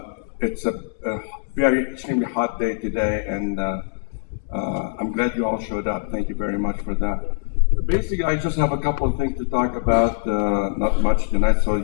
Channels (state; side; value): silent; right; digital silence